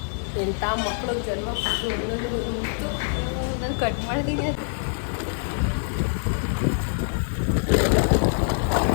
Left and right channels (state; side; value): silent; right; 62 dB below the other